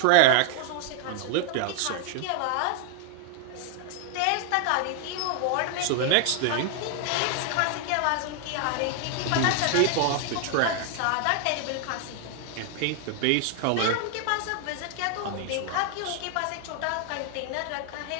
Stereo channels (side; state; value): both; different; correlation 0.00